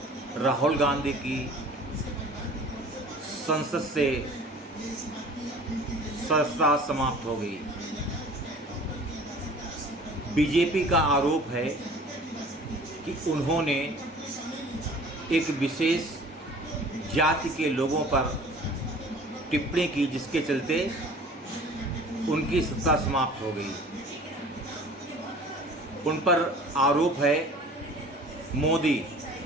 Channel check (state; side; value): normal; both; correlation 0.46